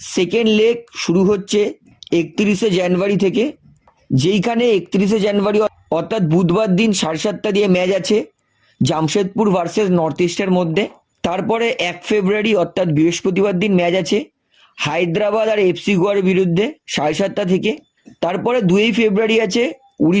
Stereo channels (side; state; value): both; identical; correlation 1.00